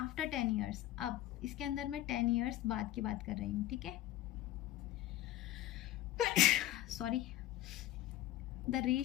10 ईयर्स, अब इसके अंदर मैं 10 ईयर्स बाद की बात कर रही हूँ, ठीक है। Sorry. The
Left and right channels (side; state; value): right; quieter; 14.6 dB